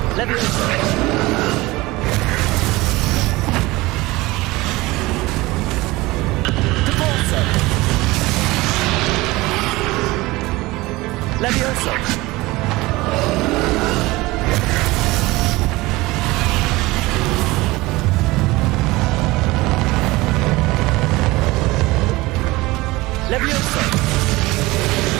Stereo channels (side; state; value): left; quieter; 20.7 dB